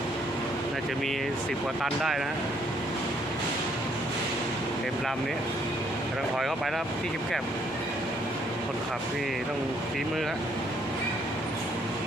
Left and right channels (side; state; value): both; normal; correlation 0.68